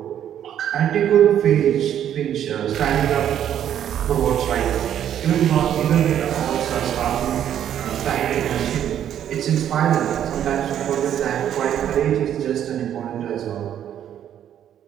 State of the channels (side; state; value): left; quieter; 10.2 dB